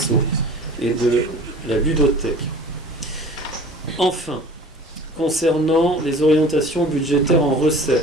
et de la ludothèque. Enfin, concernant les orientations budgétaires en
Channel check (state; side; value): normal; both; correlation 0.44